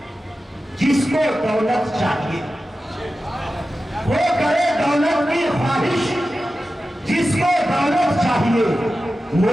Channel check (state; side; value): normal; both; correlation 0.93